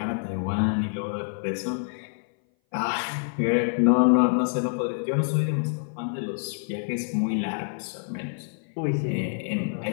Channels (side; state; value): right; silent; 58 dB below the other